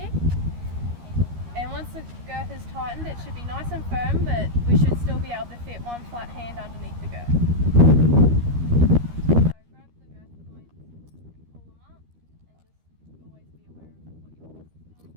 And once the girth is tightened, it should be nice and firm, but we should still be able to fit one flat hand underneath the girth. So grab the girth points, pull them up, and just always be aware of what your horse is doing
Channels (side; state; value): left; late; 13 ms